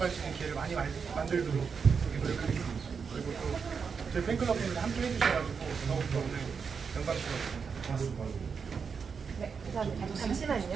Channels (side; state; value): left; quieter; 5.9 dB